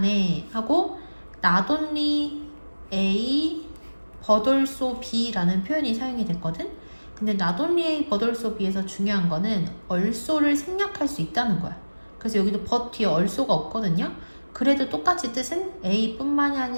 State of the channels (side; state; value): both; inverted; correlation -1.00